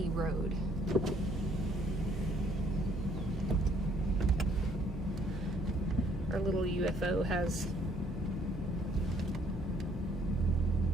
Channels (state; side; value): normal; both; correlation 0.64